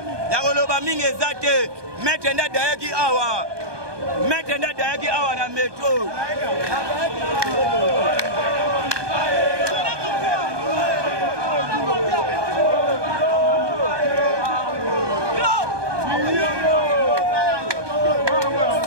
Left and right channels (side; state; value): left; late; 1.2 ms